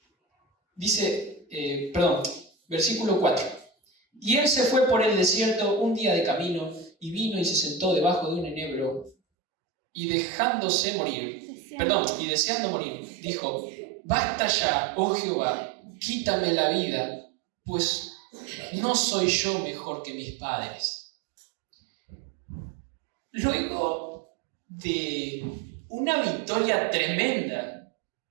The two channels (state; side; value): drops out; left; at 9.2 s